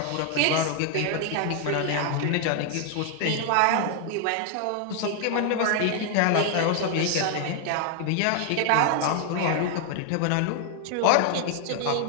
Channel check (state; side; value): different; both; correlation 0.00